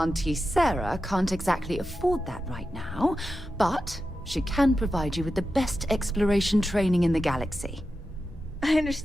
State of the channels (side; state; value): both; normal; correlation 0.91